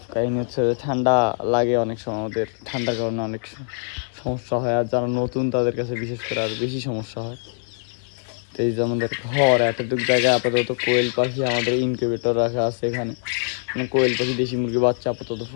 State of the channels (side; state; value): right; silent; 61 dB below the other